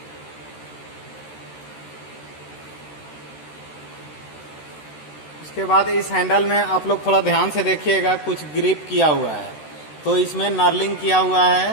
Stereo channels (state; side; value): late; right; 13 ms